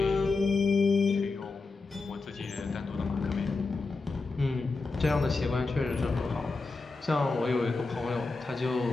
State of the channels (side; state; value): right; quieter; 3.8 dB